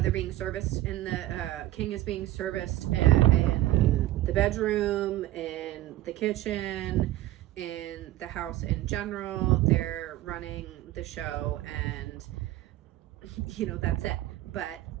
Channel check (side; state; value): left; quieter; 15.4 dB